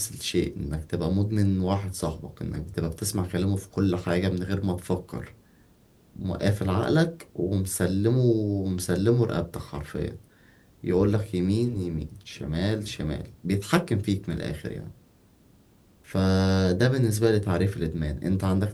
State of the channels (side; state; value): both; identical; correlation 1.00